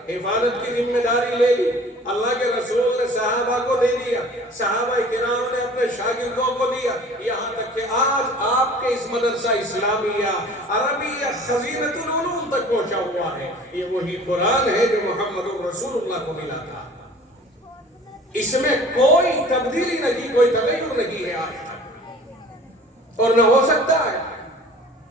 حفاظت کی ذمہ داری لے لی، اللہ کے رسول نے صحابہ کو دے دیا، صحابہ کرام نے اپنے شاگردوں کو دیا، یہاں تک کہ آج آپ کے اس مدرسہ اسلامیہ عربیہ خزینۃ العلوم تک پہنچا ہوا ہے۔ یہ وہی قرآن ہے جو محمد رسول اللہ کو ملا تھا، اس میں کوئی تبدیلی نہیں، کوئی تغیر نہیں ہے آج تک، اور نہ ہو سکتا ہے۔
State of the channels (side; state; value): both; normal; correlation 0.47